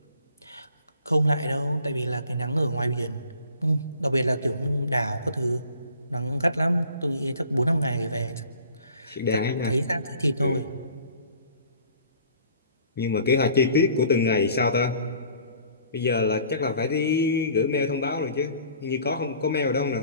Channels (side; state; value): both; inverted; correlation -0.52